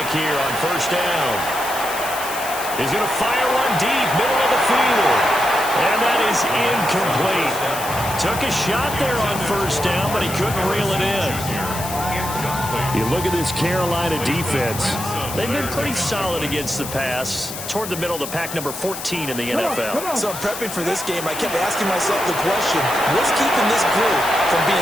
here on 1st down. He's going to fire one deep, middle of the field. And that is incomplete. Took a shot there on 1st down, but he couldn't reel it in. You look at this Carolina defense. They've been pretty solid against the pass. Toward the middle of the pack, number 14 in the NFL. So I'm prepping for this game. I kept asking myself the question, what's keeping this group from being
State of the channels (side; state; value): left; noise; hiss, 9 dB below the sound